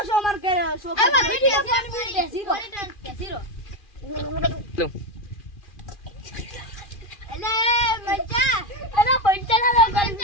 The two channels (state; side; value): late; right; 2.4 ms